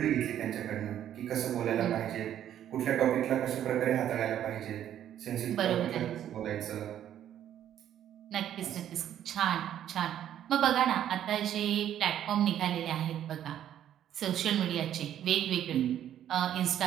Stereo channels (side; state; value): left; quieter; 10.8 dB